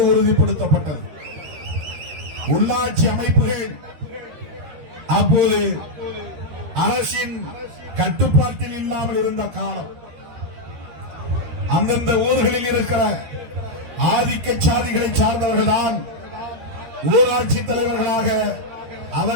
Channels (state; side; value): late; left; 13 ms